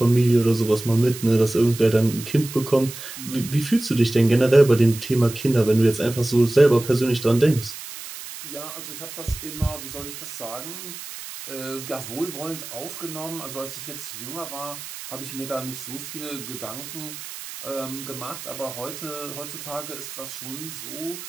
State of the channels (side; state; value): right; noise; hiss, 11 dB below the sound